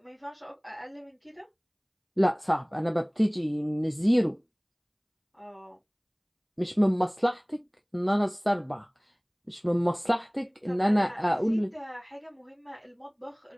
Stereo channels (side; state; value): both; identical; correlation 1.00